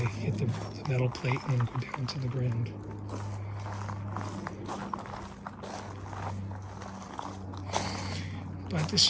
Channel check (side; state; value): both; identical; correlation 1.00